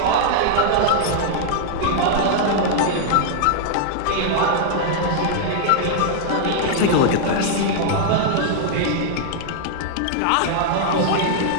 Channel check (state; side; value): different; both; correlation -0.01